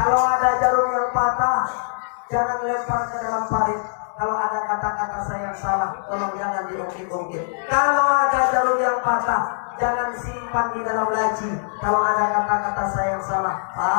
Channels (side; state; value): right; silent; digital silence